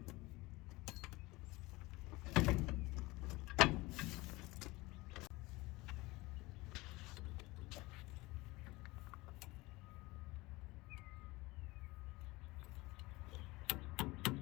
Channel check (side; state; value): right; quieter; 21.6 dB